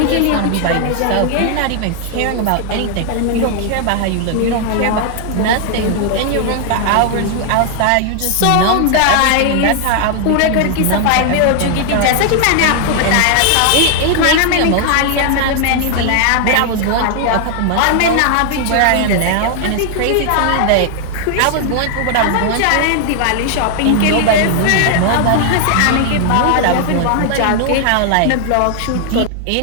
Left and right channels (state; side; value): different; both; correlation 0.00